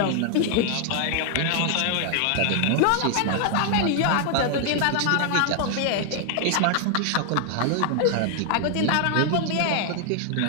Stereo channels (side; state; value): both; different; correlation 0.00